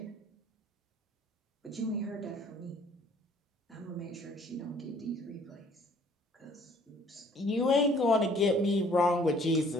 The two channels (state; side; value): normal; both; correlation 0.57